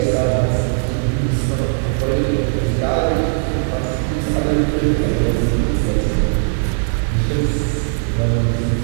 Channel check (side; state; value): left; silent; 57 dB below the other